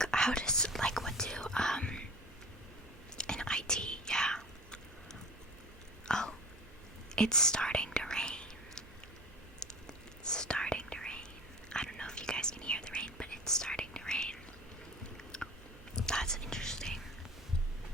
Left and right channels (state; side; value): noise; right; hum, 23 dB below the sound